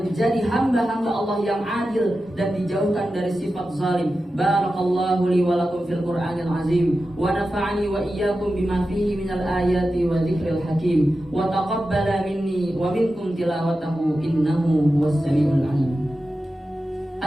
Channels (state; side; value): normal; both; correlation 0.92